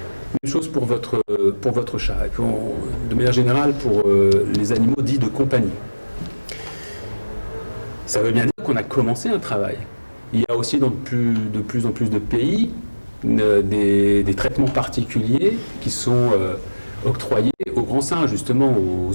Même chose pour votre chat, et puis de manière générale pour les animaux dits de compagnie. Ça veut bien dire qu'on a commencé un travail. Il y a aussi dans de plus en plus de pays des traitements particuliers qui sont octroyés aux grands singes, justement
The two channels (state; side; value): inverted; both; correlation -1.00